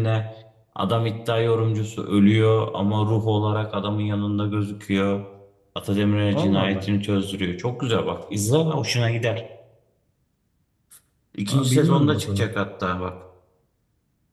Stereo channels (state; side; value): identical; both; correlation 1.00